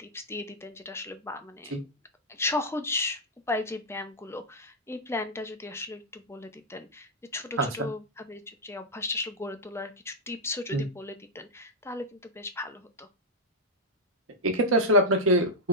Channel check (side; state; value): both; normal; correlation -0.03